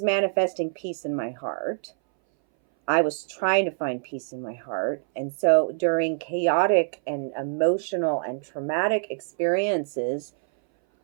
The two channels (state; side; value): silent; left; 60 dB below the other